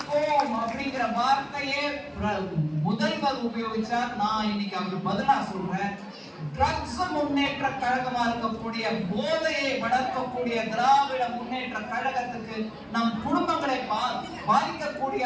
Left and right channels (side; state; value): both; identical; correlation 1.00